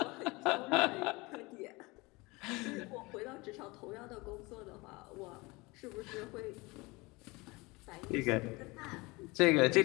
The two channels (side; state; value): right; quieter; 24.2 dB